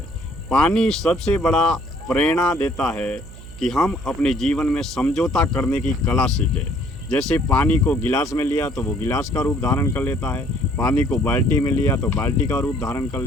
पानी सबसे बड़ा प्रेरणा देता है कि हम अपने जीवन में समझौता करने की कला सीखें। जैसे पानी को गिलास में लिया तो वो गिलास का रूप धारण कर लेता है, पानी को बाल्टी में लिया तो बाल्टी का रूप धारण कर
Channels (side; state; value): right; noise; hum, 16 dB below the sound